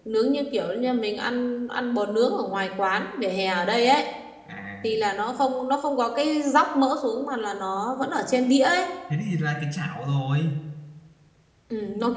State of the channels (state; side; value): identical; both; correlation 1.00